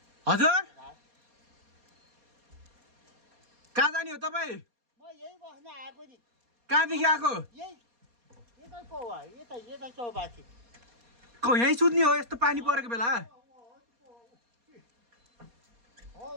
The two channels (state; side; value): late; left; 4.2 ms